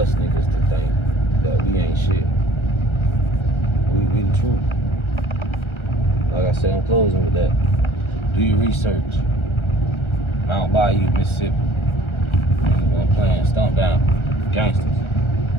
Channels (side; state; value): right; late; 1.3 ms